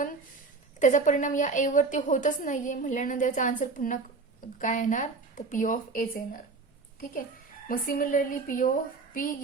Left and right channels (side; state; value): left; quieter; 4.1 dB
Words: त्याचा परिणाम या ए वरती होतच नाहीये म्हटल्यानंतर याचा आन्सर पुन्हा काय येणार, तर पी ऑफ एच येणार. ठीक आहे. मग similarly P of P